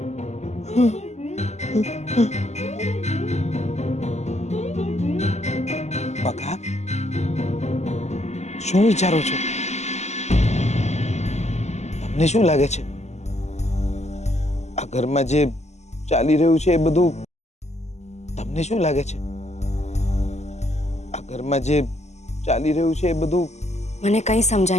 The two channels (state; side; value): late; right; 0.33 ms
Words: બકા શું વિચારો છો તમને શું લાગે છે આ ઘરમાં જે ચાલી રહ્યું છે એ બધું તમને શું લાગે છે આ ઘરમાં જે ચાલી રહ્યું છે એ બધું મને કંઈ